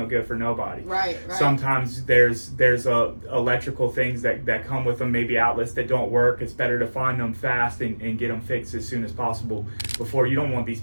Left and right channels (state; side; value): inverted; both; correlation -1.00